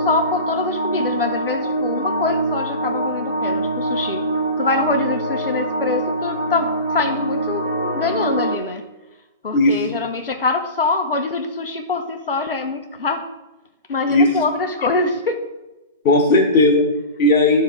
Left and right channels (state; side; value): inverted; both; correlation -0.30